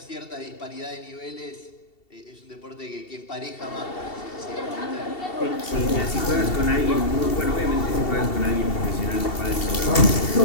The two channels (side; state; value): right; late; 2.7 ms